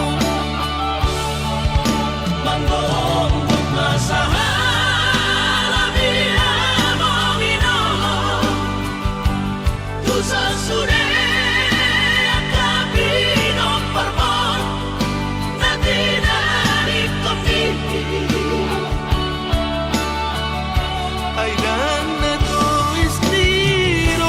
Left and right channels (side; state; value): both; identical; correlation 1.00